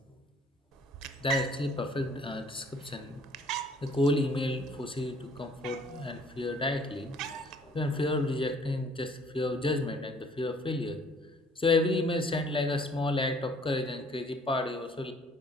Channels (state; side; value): normal; both; correlation 0.58